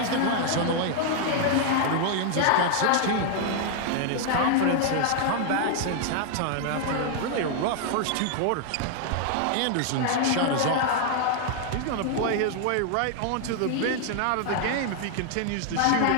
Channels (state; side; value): different; both; correlation 0.00